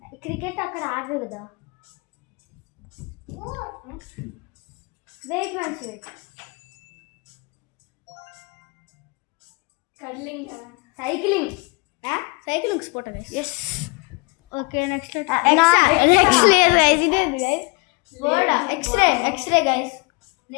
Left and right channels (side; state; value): right; quieter; 28.5 dB